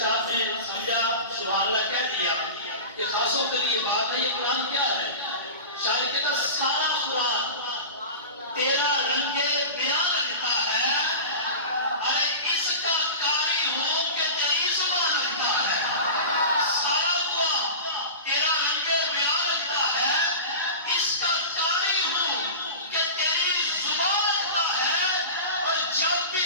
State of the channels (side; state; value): both; inverted; correlation -0.31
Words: نے سمجھا، سبحان اللہ کہہ دیا کہ خاصوں کے لیے بات ہے. یہ قرآن کیا ہے؟ شاعر کہتا سارا قرآن تیرا رنگ بیان لگتا ہے، ارے اس کا قاری ہوں کہ تیری زبان لگتا ہے. سارا قرآن تیرا رنگ بیان لگتا ہے، اس کا قاری ہوں کہ تیری زبان لگتا ہے. اور جب بھی